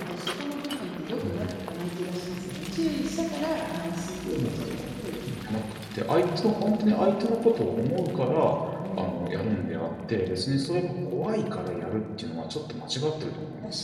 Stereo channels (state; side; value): identical; both; correlation 1.00